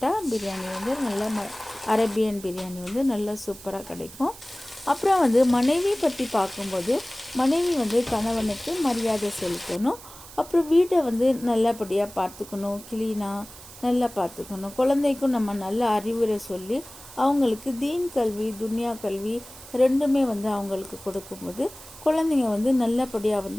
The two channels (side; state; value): right; noise; hiss, 18 dB below the sound